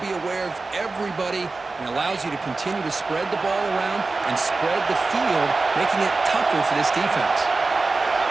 be aware of everybody, and allows you to continue to spread the ball around and spread the field, making it tougher for this defense.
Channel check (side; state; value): left; quieter; 3.7 dB